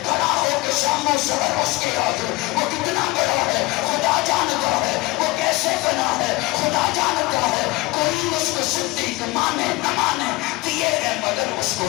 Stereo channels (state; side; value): quieter; right; 21.7 dB